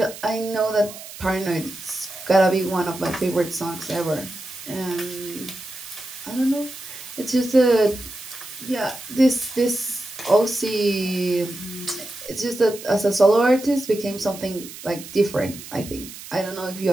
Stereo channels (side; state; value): right; noise; hiss, 14 dB below the sound